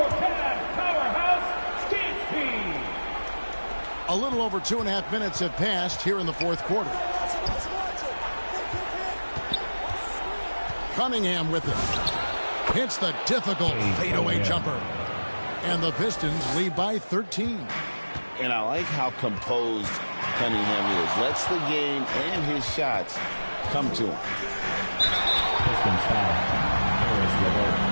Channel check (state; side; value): inverted; both; correlation -1.00